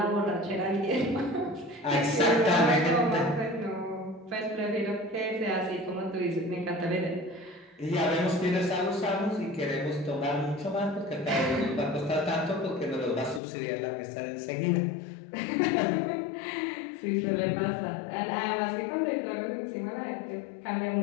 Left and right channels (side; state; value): right; drops out; at 13.4 s